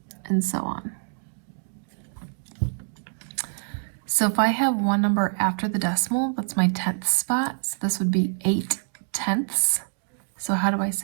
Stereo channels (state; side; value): silent; left; digital silence